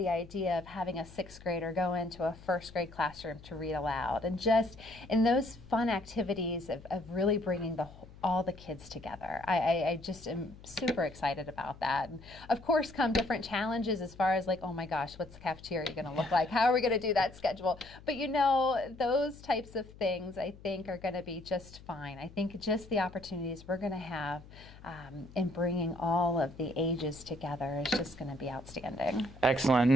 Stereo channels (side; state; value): left; noise; hum, 19 dB below the sound